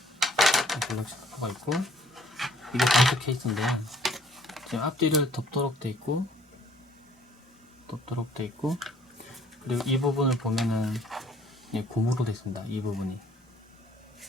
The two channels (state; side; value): normal; both; correlation 0.59